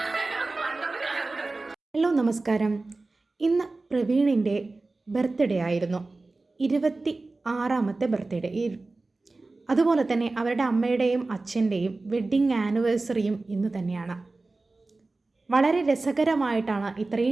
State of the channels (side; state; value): left; quieter; 3.3 dB